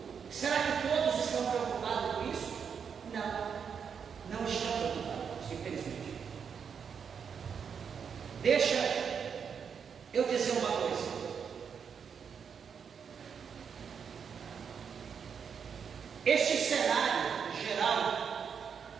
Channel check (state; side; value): quieter; left; 6.8 dB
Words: Será que todos estão preocupados com isso? Não estão preocupados, infelizmente. Deixa eu dizer uma coisa. Este cenário geral,